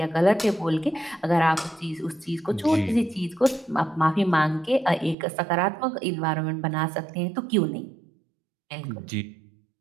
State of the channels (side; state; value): left; drops out; at 5.2 s